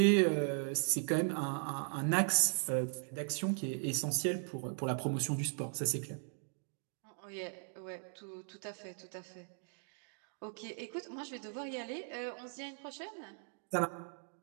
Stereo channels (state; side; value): silent; left; 52 dB below the other